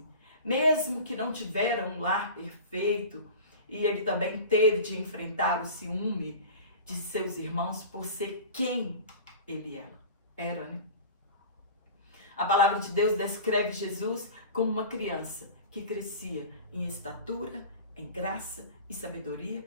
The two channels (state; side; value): inverted; both; correlation -0.36